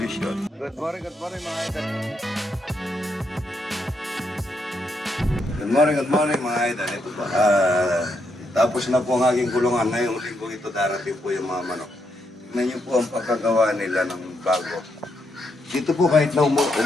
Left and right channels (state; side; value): normal; both; correlation 0.79